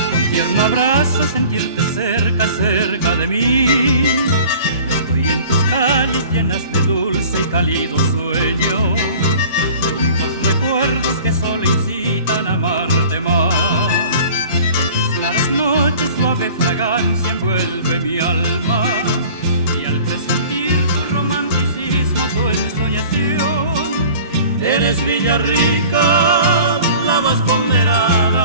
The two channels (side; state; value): both; inverted; correlation -0.45